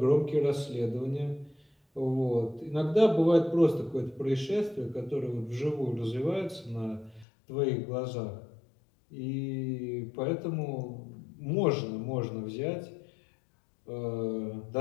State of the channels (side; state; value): right; drops out; at 7.2 s